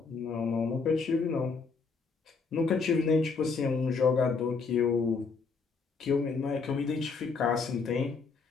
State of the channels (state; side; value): quieter; right; 4.8 dB